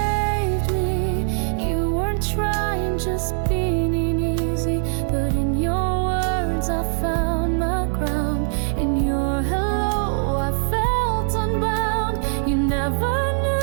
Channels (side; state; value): left; silent; digital silence